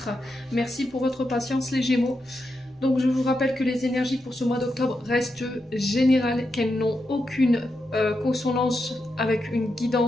Merci pour votre patience les Gémeaux. Donc je vous rappelle que les énergies pour ce mois d'octobre restent générales, qu'elles n'ont aucune consonance avec une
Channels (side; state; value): both; normal; correlation 0.86